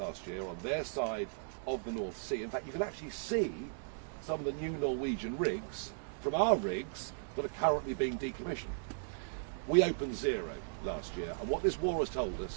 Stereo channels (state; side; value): silent; left; 53 dB below the other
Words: year on their side of the North Sea. In fact, you can actually see some of the new Norwegian rigs from our rigs that are currently being decommissioned. We opened 0 last year, and what this war has told